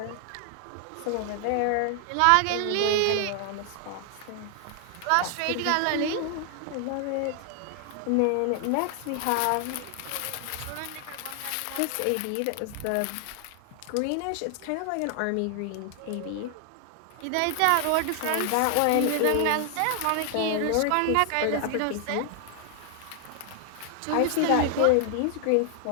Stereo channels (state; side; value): different; both; correlation 0.00